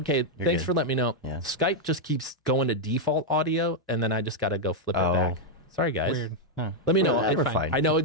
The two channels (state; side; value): normal; both; correlation -0.01